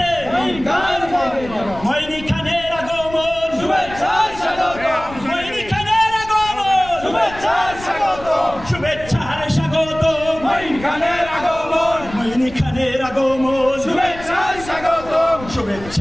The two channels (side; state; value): left; noise; rumble, 15 dB below the sound